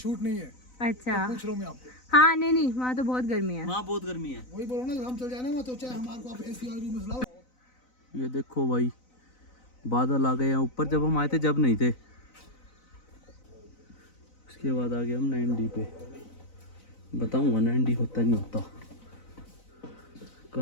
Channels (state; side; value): late; right; 4.0 ms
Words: नहीं है। अच्छा पूछ रहा हूँ मैं आपको। हाँ नहीं नहीं, वहाँ तो बहुत गर्मी है। वहाँ बहुत गर्मी है। वही बोल रहा हूँ ना, हम चल जाए ना वहाँ तो चाहे हमारे को आप एसी वाले रूम में लाओ। ये देखो भाई, बादल आ गए हैं ऊपर। जब हम आए थे जब नहीं थे। उसके बाद आ गए हम 9D पे। बताऊंगा 9D होता नहीं होता।